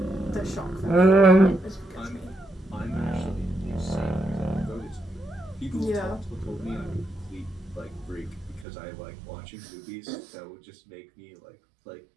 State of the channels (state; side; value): drops out; left; at 8.7 s